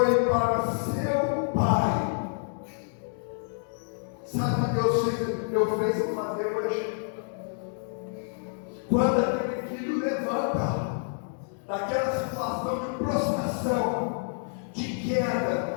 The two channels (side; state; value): right; silent; digital silence